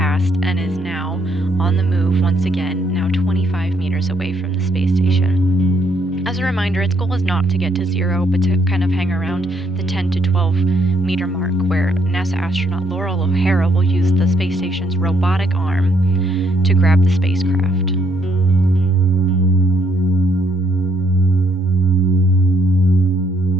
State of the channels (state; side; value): normal; both; correlation 0.71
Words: and is now on the move once again, now 25 meters away from the space station. As a reminder, its goal is not to get to zero, but to kind of hang around the 10 to 12 meter mark, where NASA astronaut Laurel O'Hara will use the space station's robotic arm to grab the spacecraft.